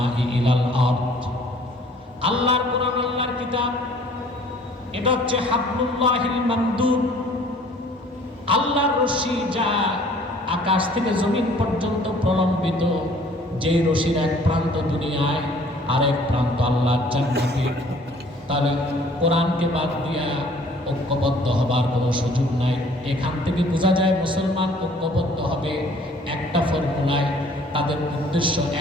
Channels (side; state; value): both; normal; correlation 0.55